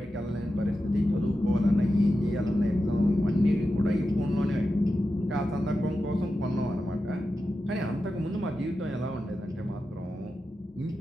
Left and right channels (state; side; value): normal; both; correlation 0.91